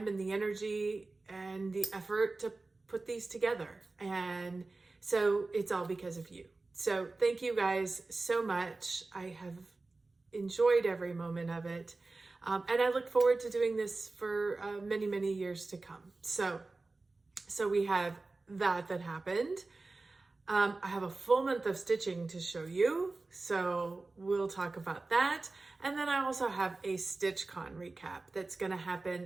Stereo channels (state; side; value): quieter; left; 3.4 dB